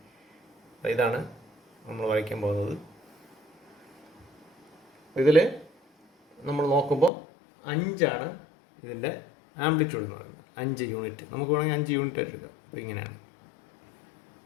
അപ്പോൾ ഇതാണ് നമ്മൾ വരയ്ക്കാൻ പോകുന്നത്. ഇതിൽ നമ്മൾ നോക്കുമ്പോൾ 5 ഇതിൻ്റെ ആംപ്ലിറ്റ്യൂഡ് എന്ന് പറയുന്നത്, 5 യൂണിറ്റ്. നമുക്ക് വേണമെങ്കിൽ 5 യൂണിറ്റ് ആയിട്ട് എടുക്കാം. അപ്പോൾ ഇങ്ങനെയാണ്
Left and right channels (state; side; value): drops out; right; at 7.1 s